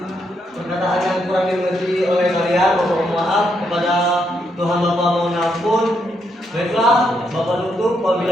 perkataan yang kurang dimengerti oleh kalian. Bapak mohon maaf, kepada Tuhan Bapak mohon ampun. Baiklah, Bapak tutup.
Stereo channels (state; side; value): normal; both; correlation 0.78